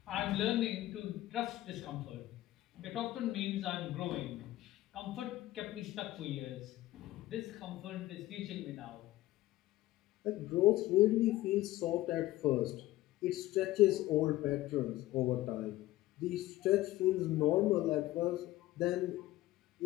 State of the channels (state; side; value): quieter; right; 16.2 dB